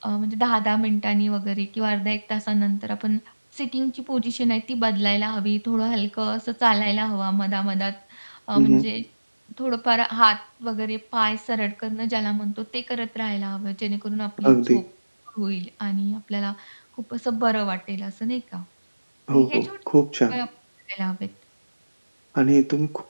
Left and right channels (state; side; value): inverted; both; correlation -1.00